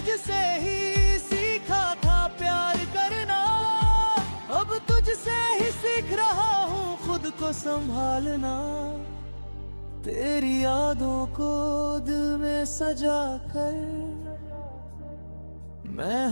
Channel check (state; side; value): inverted; both; correlation -1.00